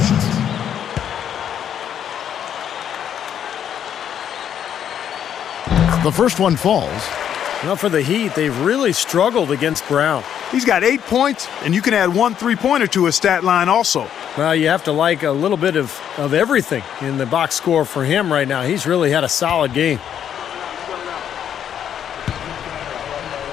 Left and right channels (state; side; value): quieter; right; 9.3 dB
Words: The first one falls. Well, for the Heat, they've really struggled against Brown. He's got 8 points, and you can add 1 3-pointer to his stat line also. Well, you have to like a little bit of everything in the box score for him right now. He's really had a solid game.